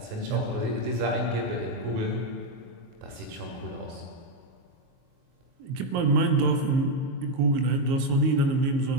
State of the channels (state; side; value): late; left; 22 ms